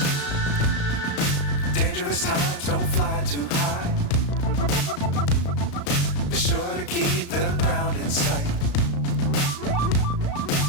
Times don't fly too high. Be sure to keep the ground in sight.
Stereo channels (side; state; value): right; late; 35 ms